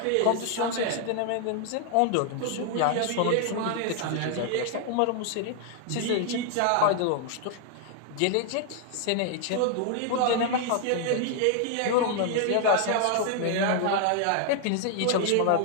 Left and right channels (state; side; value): different; both; correlation 0.00